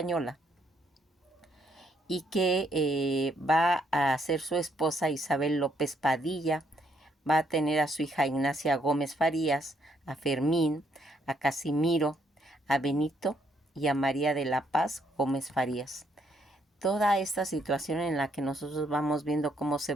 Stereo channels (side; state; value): both; normal; correlation 0.72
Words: y que va a ser su esposa Isabel López Padilla, va a tener a su hija Ignacia Gómez Farías, a Fermín, a Casimiro, a Benito y a María de la Paz Gómez Farías. Toda esta situación en la que nosotros vamos viendo cómo se